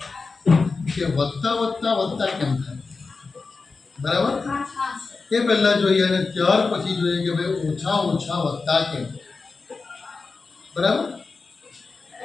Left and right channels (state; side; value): quieter; right; 4.3 dB